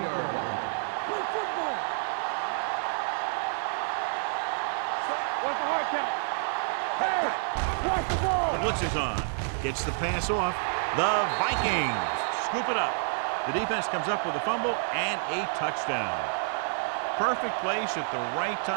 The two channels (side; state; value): left; silent; digital silence